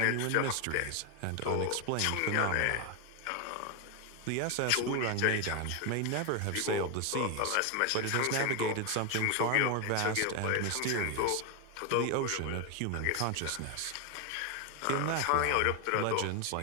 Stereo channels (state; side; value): different; both; correlation 0.01